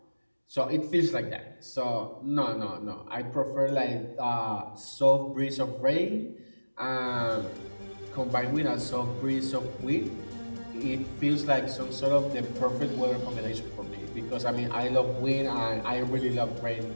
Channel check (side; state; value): both; inverted; correlation -1.00